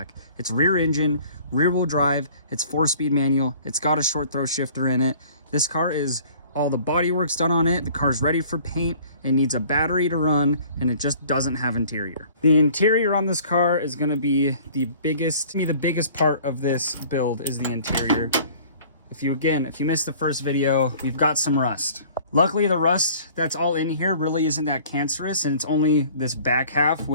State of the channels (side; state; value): both; inverted; correlation -0.51